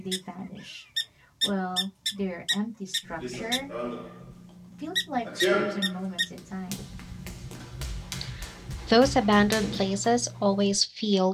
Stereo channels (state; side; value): identical; both; correlation 1.00